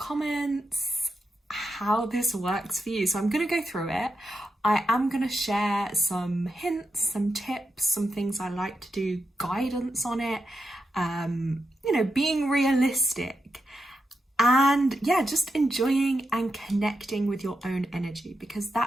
how this works for you. So I'm going to go through it. I am going to share some hints, some tips, some things I like to do, guidance on it, being realistic, and just enjoying and connecting with your own energy, because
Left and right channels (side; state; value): both; normal; correlation 0.86